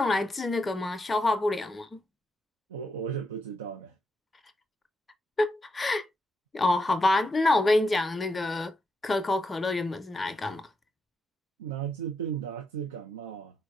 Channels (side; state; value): both; normal; correlation 0.83